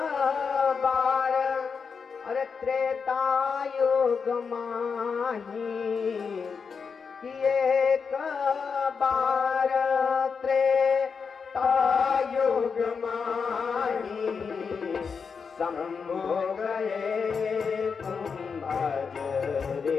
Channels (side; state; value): right; quieter; 5.7 dB